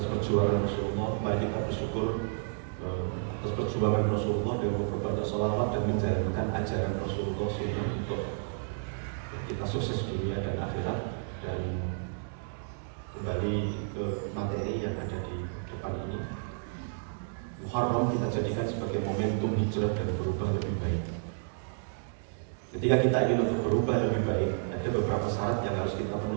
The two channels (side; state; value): left; silent; digital silence